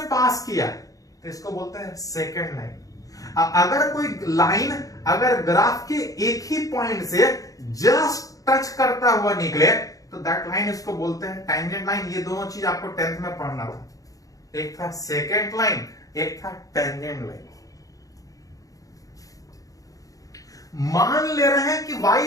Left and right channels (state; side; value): late; right; 0.17 ms